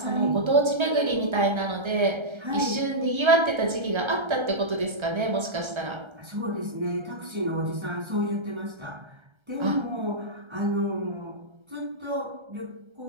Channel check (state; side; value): late; left; 1.3 ms